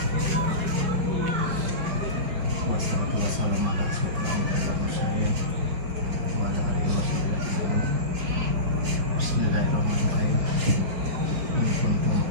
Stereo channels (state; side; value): late; left; 5.0 ms